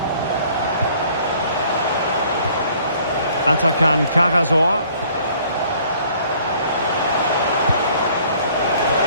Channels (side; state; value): both; inverted; correlation -0.57